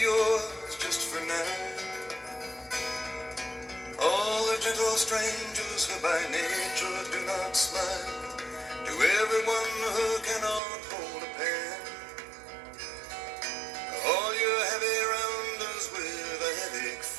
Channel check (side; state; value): left; drops out; at 10.6 s